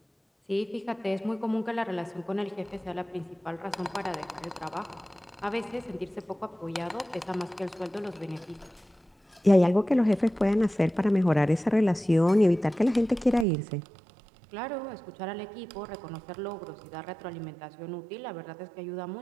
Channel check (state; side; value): drops out; left; at 13.5 s